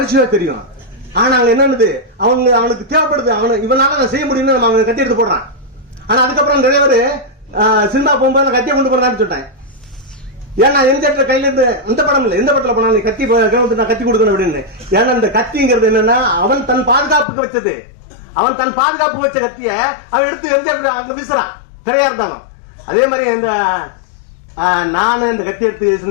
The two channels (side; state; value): right; drops out; at 17.2 s